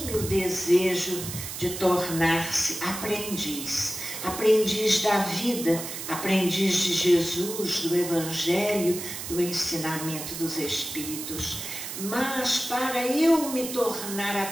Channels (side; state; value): right; noise; hiss, 7 dB below the sound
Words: o desejo de tornar-se aprendiz, aprendiz da vida, aprendiz de Jesus, do Evangelho, do ensinamento dos Espíritos. Mas para eu me tornar